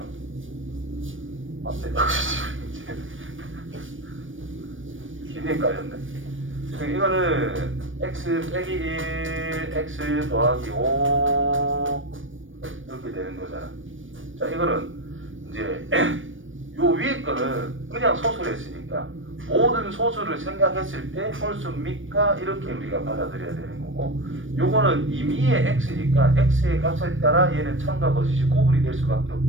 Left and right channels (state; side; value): late; left; 0.57 ms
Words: 맞네. 거짓 명제. 기대 헷갈렸네. 이거는 x 빼기 1, x 더하기 5 이렇게 되는 거잖아. 자, 이거는 이제 요 위에 거는 그냥 소수를 했으니까 모든 소수를 생각했을 때 홀수입니까? 이렇게 우리가 받아들여야 되는 거고, 요거는 임의의 x니까 x의 값에 따라 얘는 참과 거짓이 구분이 될 수밖에